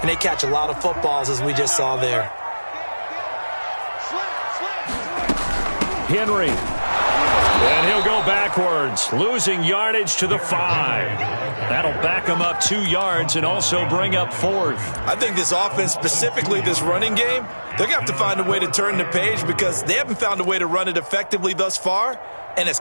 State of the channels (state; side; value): inverted; both; correlation -1.00